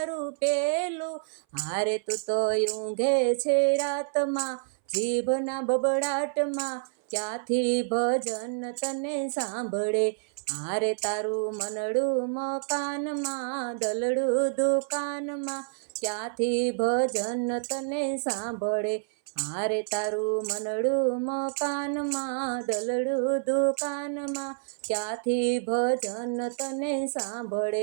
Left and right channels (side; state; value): left; silent; 59 dB below the other